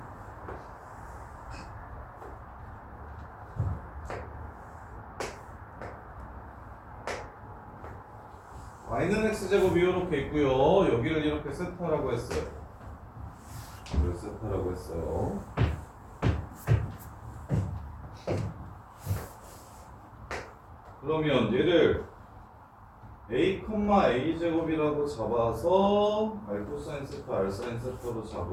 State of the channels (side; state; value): both; identical; correlation 1.00